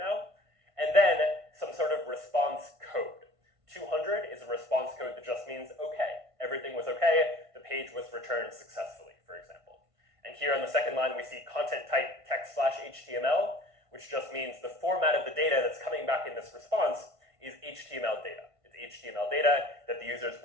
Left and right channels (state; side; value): late; left; 1.5 ms